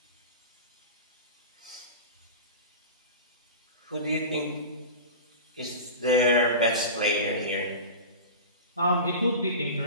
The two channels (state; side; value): inverted; both; correlation -0.30